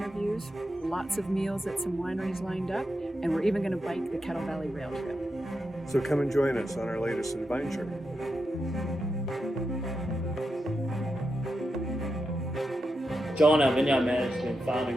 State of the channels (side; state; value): both; normal; correlation 0.87